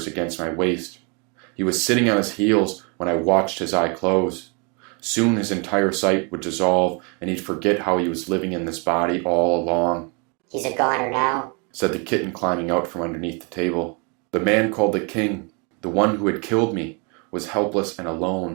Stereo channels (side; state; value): left; quieter; 33.6 dB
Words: against my waist. He was sitting on his heels when I watched his eye close. Soon his entire sight would dissolve, and he'd forget how he was living in this body all along. "He's a goner now," said the kitten climbing out from underneath the table. The man called the king, the one who had killed me, was helpless and